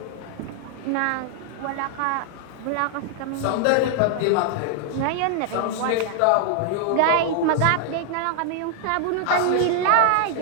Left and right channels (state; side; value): different; both; correlation -0.01